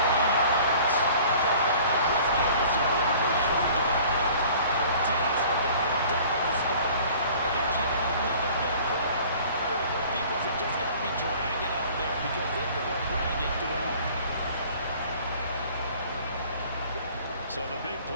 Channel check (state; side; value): inverted; both; correlation -0.49